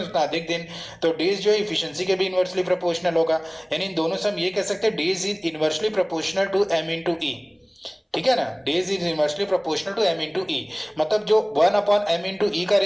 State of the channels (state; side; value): identical; both; correlation 1.00